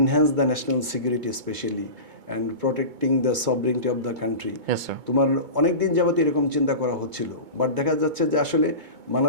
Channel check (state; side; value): late; left; 2.2 ms